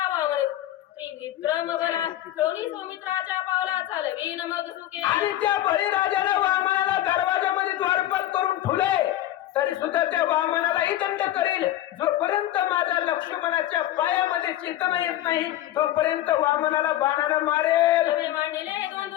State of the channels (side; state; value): right; quieter; 13.6 dB